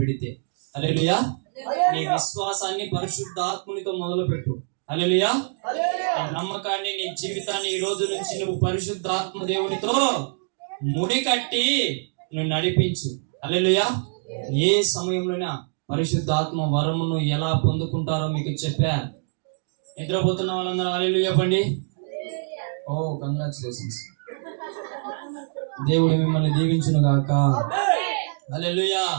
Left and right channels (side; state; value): left; silent; digital silence